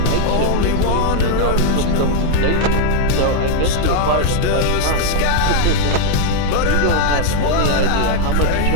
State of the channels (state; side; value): different; both; correlation 0.00